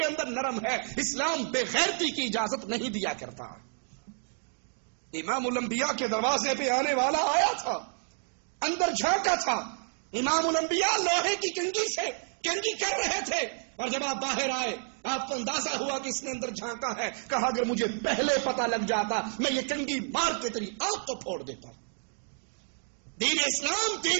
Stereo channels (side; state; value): left; silent; 58 dB below the other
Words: اندر نرم ہے، اسلام بے غیرتی کی اجازت نہیں دیا کرتا۔ امام الانبیاء کے دروازے پہ آنے والا آیا تھا، اندر جھانکا تھا، امام الانبیاء لوہے کی کنگھی سے کنگھی کر رہے تھے، اور جب آپ باہر آئے آپ کو اندازہ ہوا کہ اس نے اندر جھانکا ہے، کہا اگر مجھے پہلے پتہ لگ جاتا میں یہ کنگھی مار کے تیری آنکھ کو پھوڑ دیتا۔ دین اسلام